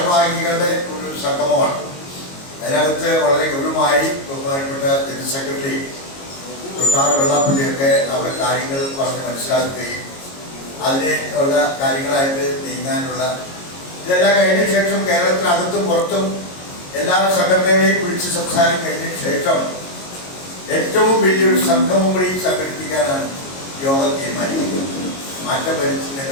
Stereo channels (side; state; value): right; late; 22 ms